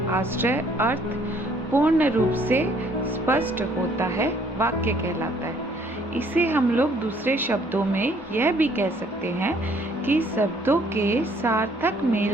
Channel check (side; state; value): both; normal; correlation 0.63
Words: आश्रय अर्थ पूर्ण रूप से स्पष्ट होता है, वाक्य कहलाता है। इसे हम लोग दूसरे शब्दों में यह भी कह सकते हैं कि शब्दों के सार्थक